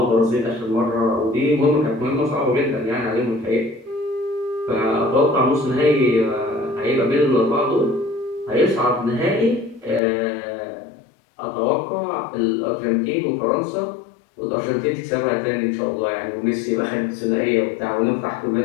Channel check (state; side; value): drops out; right; at 10.0 s